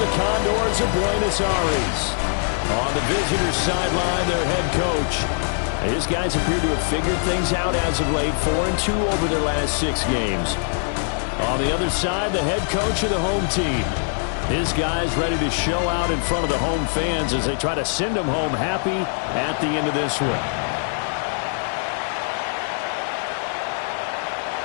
Condors of Buenos Aires. On the visitors' sideline, their head coach. His guys appear to have figured things out as of late, 4-2 over their last 6 games. On the other side, the head coach of the home team. His guys ready to show out in front of the home fans as they try to send them home happy at the end of this one.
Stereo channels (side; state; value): right; silent; 62 dB below the other